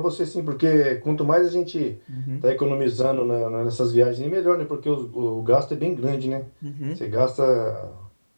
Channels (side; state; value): both; inverted; correlation -1.00